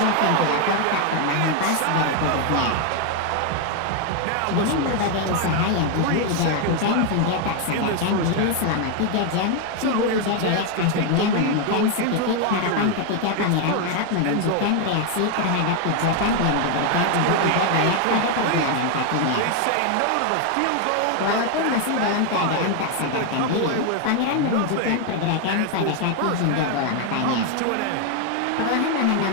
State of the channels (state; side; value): different; both; correlation 0.01